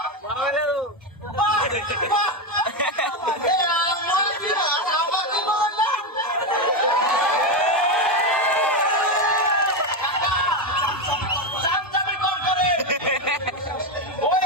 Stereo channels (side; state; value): both; normal; correlation 0.10